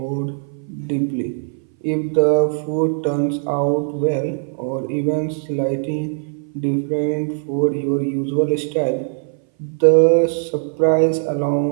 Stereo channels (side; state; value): left; silent; 60 dB below the other